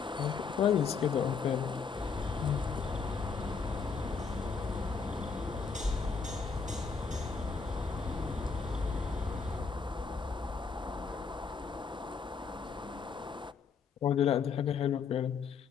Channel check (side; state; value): right; quieter; 5.4 dB